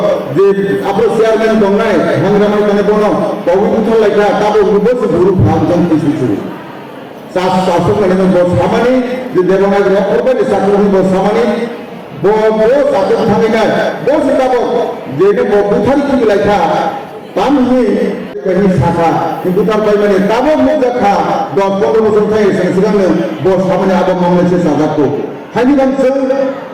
जे आपले शेअरमॅन दोंगनाय हंगामाय कने बोनो, पवित्र लायका ताबो रुबस गुरु भांजन तिसुचु. शासक कने बो सामानी जे देवनाय रखोबे साकरनि बो सामानी बो साकन थांगिना बो सिताबो जेने बो बुथारि कि लायका तामहि कनि साखा किन्तु तार बायमाने ताबो मुजाखा 10-15 বছর थाय सिगांनो बो सामानी आबो मावनायसे साजाखौ हानि बांसो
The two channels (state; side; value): identical; both; correlation 1.00